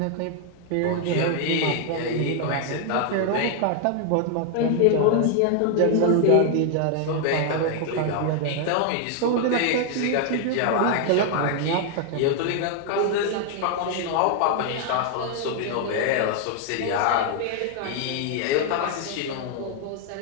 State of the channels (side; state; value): both; different; correlation 0.00